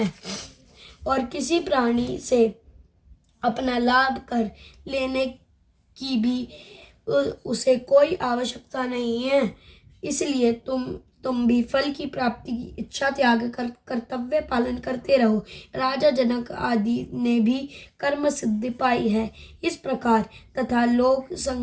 और किसी प्राणी से अपना लाभ कर लेने की भी उसे कोई आवश्यकता नहीं है। इसलिए तुम तुम भी फल की प्राप्ति की इच्छा त्याग कर कर्तव्य पालन करते रहो। राजा जनक आदि ने भी कर्म सिद्धि पाई है। इस प्रकार तथा लोक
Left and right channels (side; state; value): both; identical; correlation 1.00